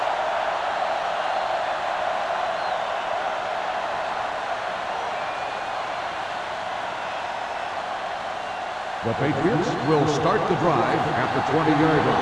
The Patriots will start the drive at the 20-yard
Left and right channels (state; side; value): identical; both; correlation 1.00